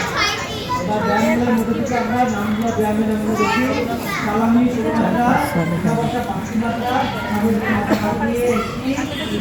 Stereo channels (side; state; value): both; identical; correlation 1.00